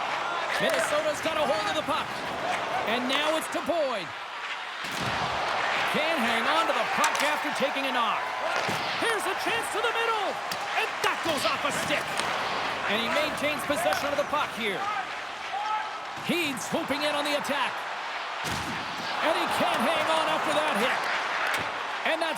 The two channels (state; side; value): identical; both; correlation 1.00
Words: Minnesota's got a hold of the puck. And now it's to Boyd. Can't hang on to the puck after taking a knock. Here's a chance to the middle. And that goes off a stick. And he maintains possession of the puck here. He's swooping in on the attack. And he can't hang on after that hit. And